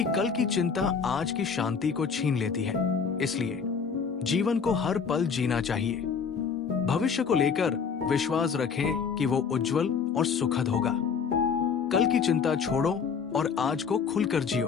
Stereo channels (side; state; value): right; quieter; 6.1 dB